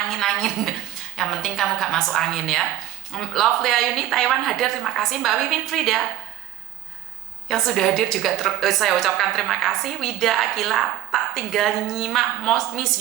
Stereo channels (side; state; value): left; quieter; 13.3 dB